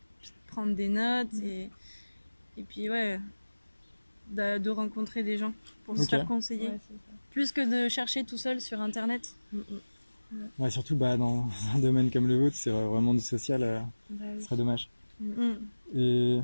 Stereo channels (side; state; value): both; inverted; correlation -1.00